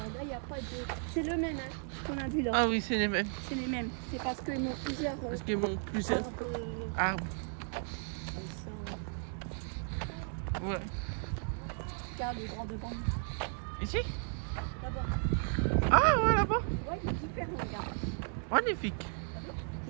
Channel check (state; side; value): silent; left; 54 dB below the other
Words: là, il n'y a pas de... C'est le même hein, qu'on a vu là. Ah oui, c'est les mêmes. C'est les mêmes. C'est parce qu'ils ont plusieurs... Parce qu'ils m'ont plusieurs arbres. comme ça. Ouais. Regarde le grand devant. Ici? Là-bas. Ah ouais, là-bas. Ouais, il est différent, regarde. Magnifique.